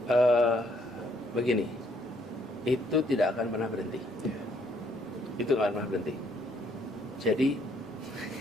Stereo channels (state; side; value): normal; both; correlation 0.68